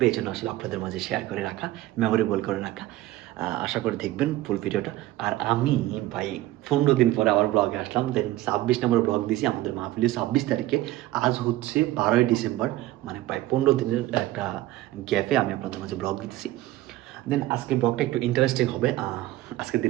এই জন্য আসলে আপনাদের মাঝে শেয়ার করে রাখা, মেমোরেবল করে রাখা। আশা করে দেখবেন ফুল ভিডিওটা। আর আমি ভাই 15 দিন পরে আবার ব্লগে আসলাম। দেন 26 নম্বর ব্লগ দিয়েছি আমাদের মাহফিলে 26 তারিখে। আজ হচ্ছে 12ই ডিসেম্বর, মানে প্রায় 15 দিনের একটা গ্যাপে আমি আপনাদের মাঝে ব্লগ দিতেছি। দেন আজকের ব্লগটা একটু ইন্টারেস্টিং হবে। আজকের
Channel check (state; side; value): quieter; left; 16.0 dB